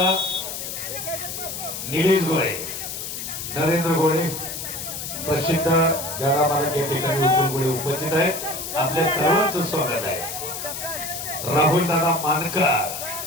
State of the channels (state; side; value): noise; left; hiss, 6 dB below the sound